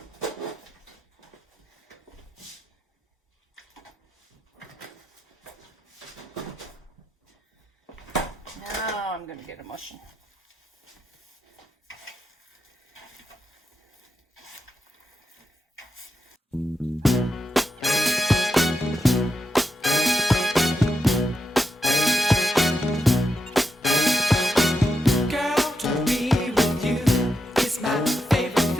Now I'm going to get a mushing.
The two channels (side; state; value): both; normal; correlation 0.86